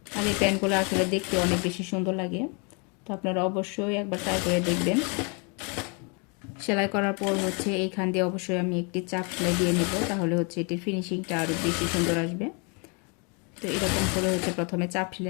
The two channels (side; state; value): right; quieter; 34.0 dB